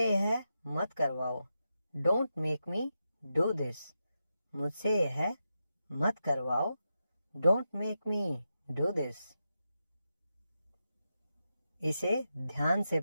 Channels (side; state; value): both; inverted; correlation -0.88